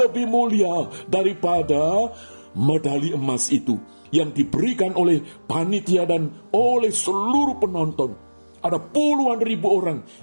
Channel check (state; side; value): inverted; both; correlation -1.00